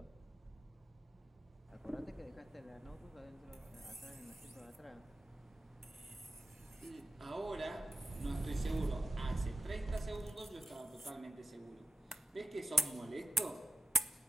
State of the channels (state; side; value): normal; both; correlation 0.92